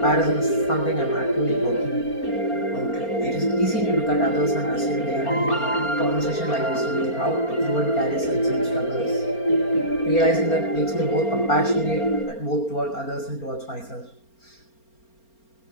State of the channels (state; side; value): late; right; 4.4 ms